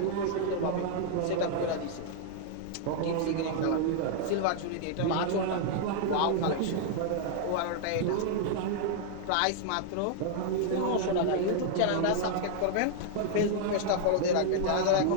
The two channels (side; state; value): both; different; correlation -0.01